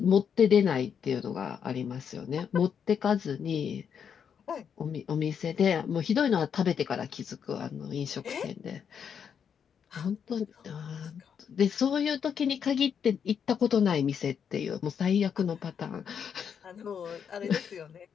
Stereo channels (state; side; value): quieter; right; 7.5 dB